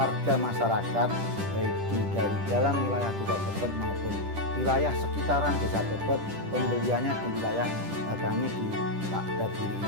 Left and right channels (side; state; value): left; late; 10 ms